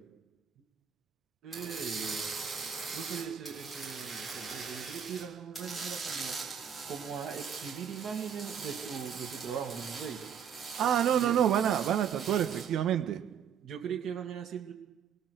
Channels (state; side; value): quieter; left; 8.1 dB